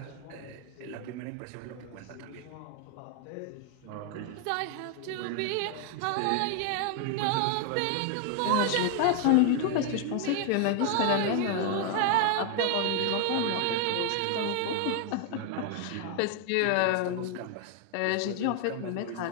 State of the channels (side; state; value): both; different; correlation 0.01